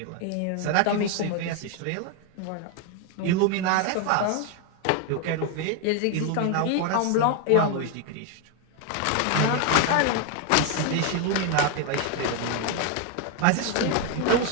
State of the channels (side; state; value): both; different; correlation 0.01